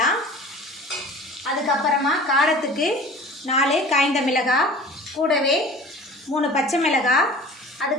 அதுக்கப்புறமா காரத்துக்கு 4 காய்ந்த மிளகாய், கூடவே 3 பச்சை மிளகாய்,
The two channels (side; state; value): both; normal; correlation 0.42